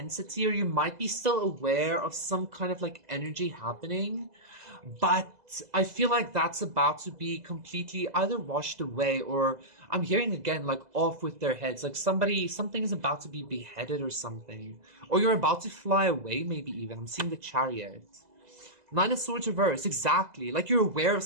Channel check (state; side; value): late; left; 2.0 ms